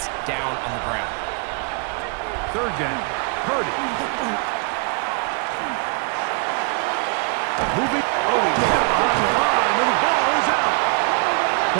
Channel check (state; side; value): quieter; left; 35.4 dB